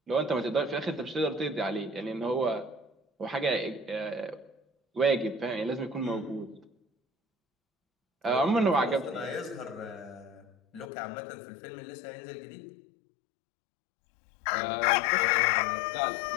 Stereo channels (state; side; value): drops out; right; at 10.9 s